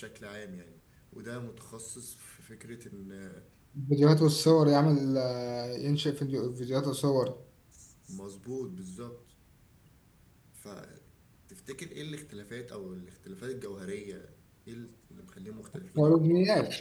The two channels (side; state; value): both; identical; correlation 1.00